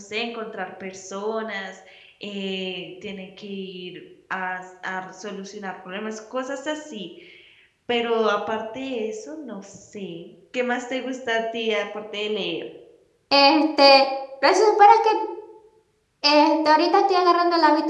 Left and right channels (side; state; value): both; identical; correlation 1.00